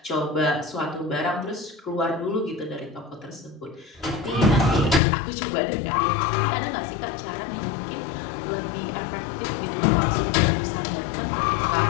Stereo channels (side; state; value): right; drops out; at 5.0 s